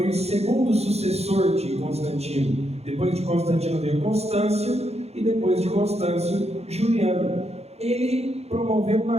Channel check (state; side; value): late; left; 0.31 ms